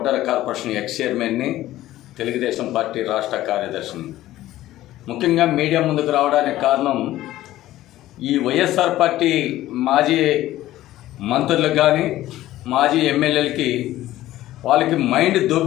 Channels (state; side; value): quieter; right; 14.9 dB